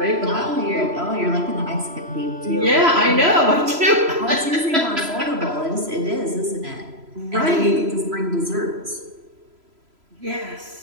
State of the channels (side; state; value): left; late; 3.0 ms